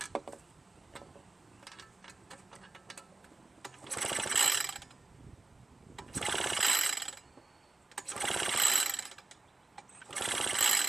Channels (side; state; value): left; quieter; 3.2 dB